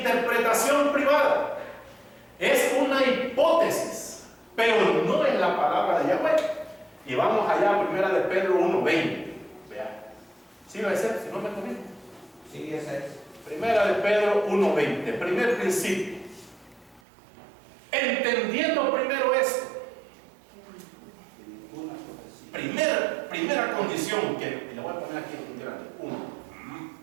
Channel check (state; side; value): drops out; left; at 17.0 s